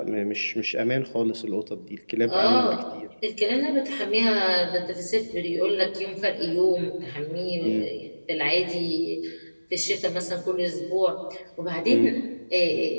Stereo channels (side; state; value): both; inverted; correlation -1.00